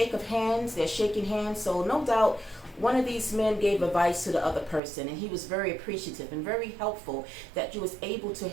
of hands, they're shaking hands. So no doubt one of these men gave advice to the other person, and he was very appreciative and very helpful that you was able to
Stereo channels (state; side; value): drops out; left; at 4.8 s